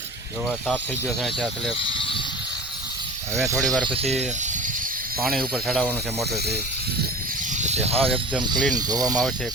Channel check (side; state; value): both; normal; correlation 0.37